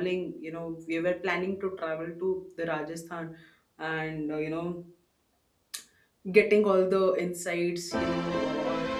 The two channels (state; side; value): identical; both; correlation 1.00